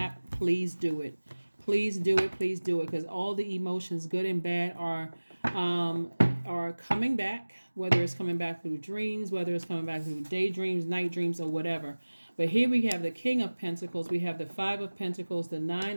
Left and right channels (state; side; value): inverted; both; correlation -1.00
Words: please do it. Please do it. Please do it, because all the emotions, good and bad, are coming back. Whether it's coming back through dreams, whether it's coming back through daydreams, night dreams, or whatever. But here we have the King of Pentacles, we have the Five of Pentacles, the